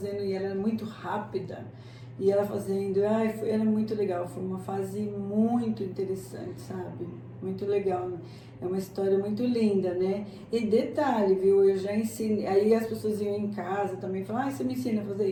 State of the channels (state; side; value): identical; both; correlation 1.00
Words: e ela era muito rápida. E ela fazendo, era muito legal. Foi uma fase muito interessante, sabe? Muito legal. É uma história muito linda, né? E detalhe, viu? Eu já ensinei. Aí as pessoas iam em casa também e falavam, você me ensina a